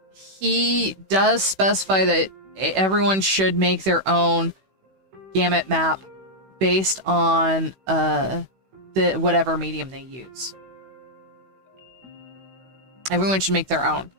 He does specify that everyone should make their own gamut map based on the whatever medium they use. Everyone should make their own.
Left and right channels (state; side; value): late; left; 16 ms